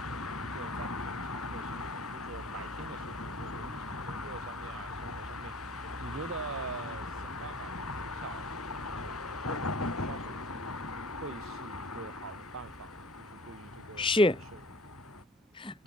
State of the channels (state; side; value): normal; both; correlation 0.46